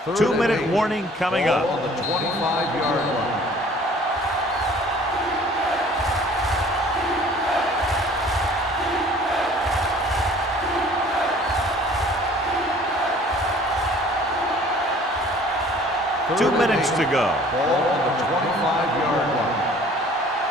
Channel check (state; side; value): normal; both; correlation 0.51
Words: 2-minute warning coming up. On the 25-yard line. Two minutes to go. Ball on the 25-yard line.